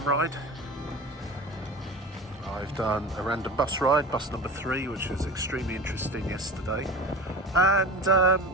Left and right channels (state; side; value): normal; both; correlation 0.33